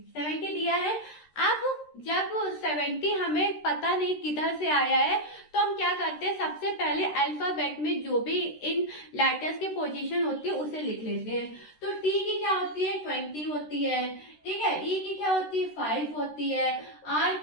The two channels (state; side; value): late; right; 13 ms